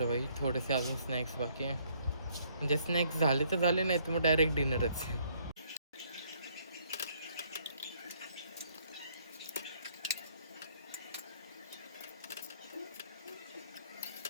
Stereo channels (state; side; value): inverted; both; correlation -0.65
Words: बाई थोडेसे अजून स्नॅक्स बाकी आहे. म्हणजे स्नॅक्स झाले तर झाले, नाही तर मग डायरेक्ट डिनरच.